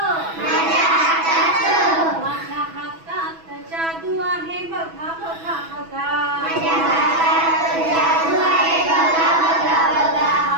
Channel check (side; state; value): left; late; 6.1 ms